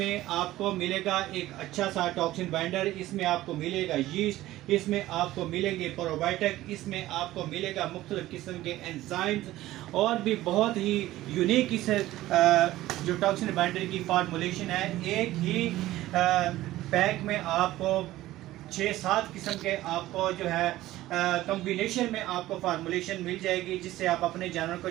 आपको मिलेगा एक अच्छा सा टॉक्सिन बाइंडर, इसमें आपको मिलेगा यीस्ट, इसमें आपको मिलेंगे प्रोबायोटिक, इसमें आपको मिलेगा मुख्तलिफ किस्म के एंजाइम्स, और भी बहुत ही यूनिक इस जो टॉक्सिन बाइंडर की फार्मूलेशन है। एक ही पैक में आपको 6-7 किस्म के आपको जो है कॉम्बिनेशन में आपको फार्मूलेशन मिल जाएगी, जिससे आप अपने जानवर को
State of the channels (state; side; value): quieter; left; 15.8 dB